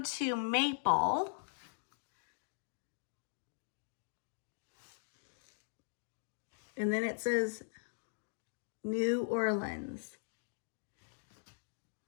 Maple. And then it says New Orleans.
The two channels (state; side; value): silent; right; digital silence